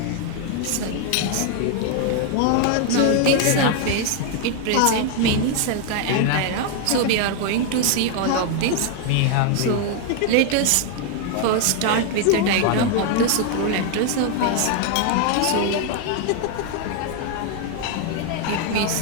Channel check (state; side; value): different; both; correlation 0.00